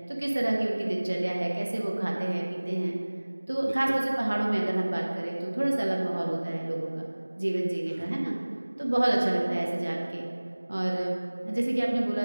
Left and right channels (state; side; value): inverted; both; correlation -1.00